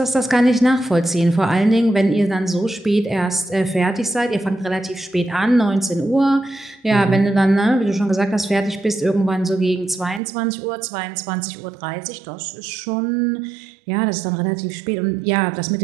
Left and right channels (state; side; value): drops out; left; at 10.2 s